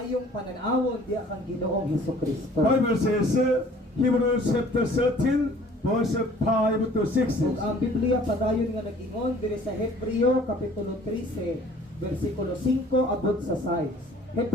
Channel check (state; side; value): normal; both; correlation 0.52